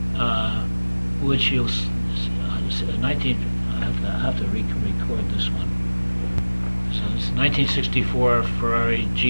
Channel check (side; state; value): both; inverted; correlation -1.00